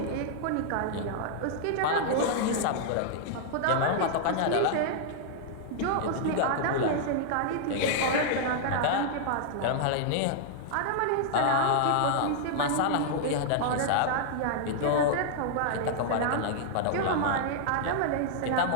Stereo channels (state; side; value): different; both; correlation -0.01